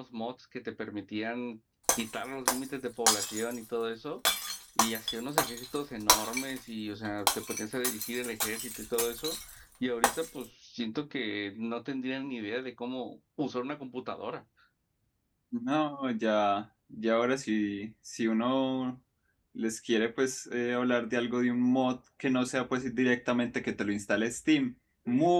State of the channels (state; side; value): identical; both; correlation 1.00